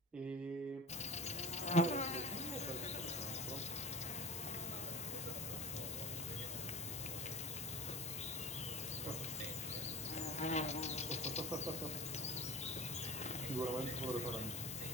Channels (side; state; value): both; normal; correlation 0.33